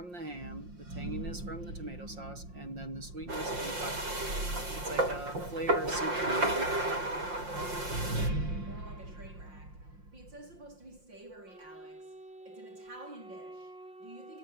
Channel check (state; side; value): late; left; 5.7 ms